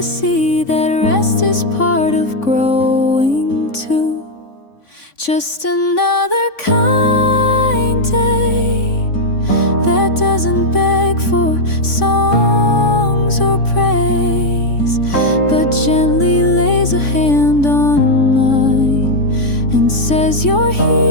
see that rest is part of growing too. Just another kind day that doesn't beg for songs or praise, but gently lays a hand on mine and says you're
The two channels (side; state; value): right; late; 3.5 ms